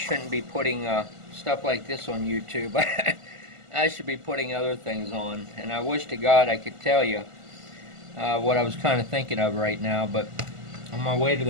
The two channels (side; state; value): left; late; 1.5 ms